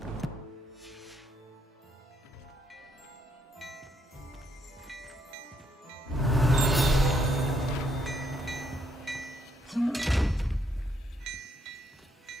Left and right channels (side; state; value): both; normal; correlation 0.73